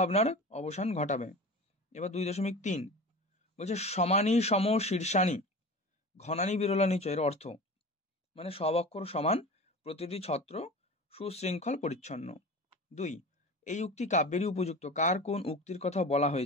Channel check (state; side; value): normal; both; correlation 0.34